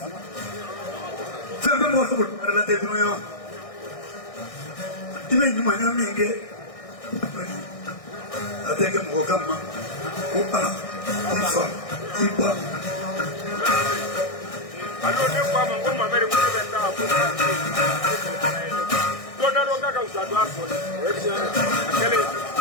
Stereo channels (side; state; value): right; late; 1.6 ms